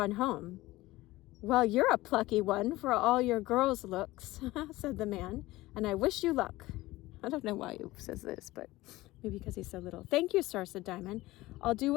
home." "Well, you're a plucky one for all your girl's looks," said the man, "and I wish you luck." I don't know why he says this, but maybe because he's so little. "Thank you, sir," said Diamond. "I'll do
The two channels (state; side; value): quieter; right; 18.5 dB